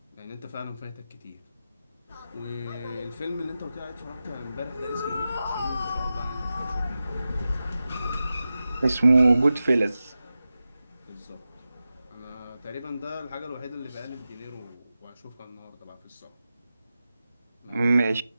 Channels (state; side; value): inverted; both; correlation -0.93